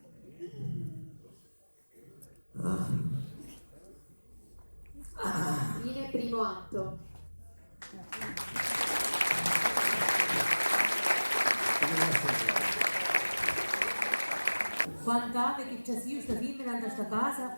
Fine primo atto. Quant'anni che c'è io sta femmina in questa casa,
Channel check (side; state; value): both; inverted; correlation -1.00